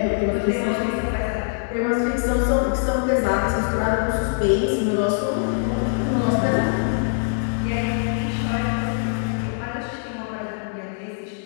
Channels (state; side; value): silent; right; digital silence